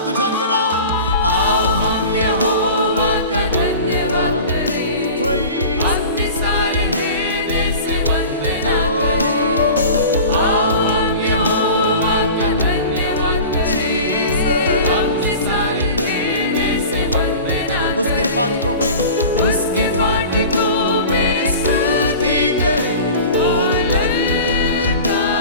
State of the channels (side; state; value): both; inverted; correlation -0.37